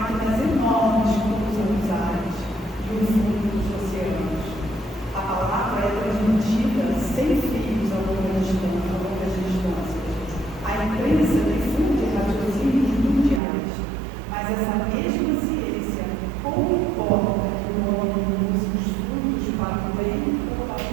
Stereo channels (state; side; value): drops out; left; at 13.4 s